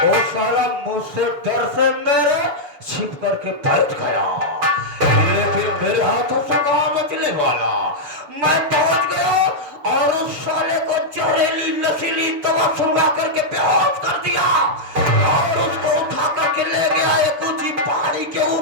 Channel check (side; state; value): left; late; 6.8 ms